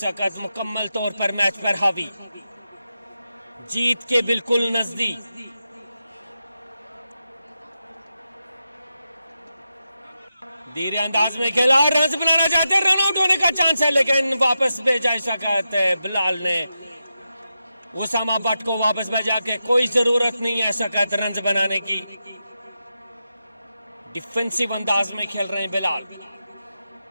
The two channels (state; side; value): inverted; both; correlation -0.89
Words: वक्त मुकम्मल तौर पर मैच पर हावी, जीत के बिल्कुल नजदीक। धीरे अंदाज में खेला, रन बनाना चाहते हैं, रन आउट होने का चांस है, लेकिन वापस भेजा इस वक्त बिलाल ने उसामा भट्ट को वापस भेजा के कोई जरूरत नहीं है इस वक्त रन बनाने की। डिफेंसिव अंदाज में खेल रहे हैं बिलाल